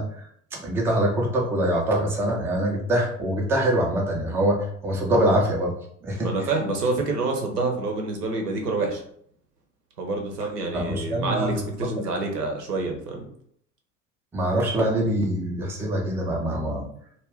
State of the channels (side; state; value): both; normal; correlation 0.38